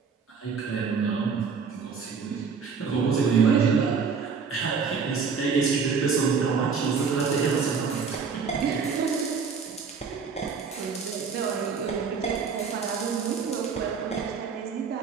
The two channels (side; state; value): left; quieter; 5.7 dB